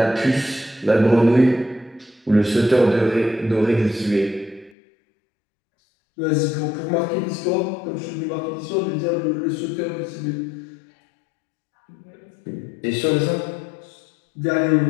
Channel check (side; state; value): right; drops out; at 4.7 s